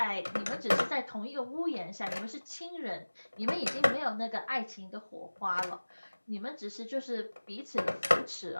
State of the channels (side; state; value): both; inverted; correlation -1.00